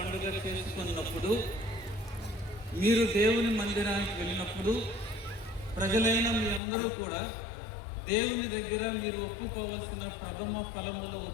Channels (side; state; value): right; drops out; at 6.6 s